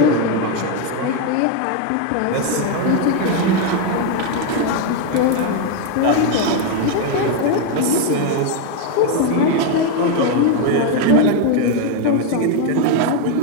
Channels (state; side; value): different; both; correlation 0.02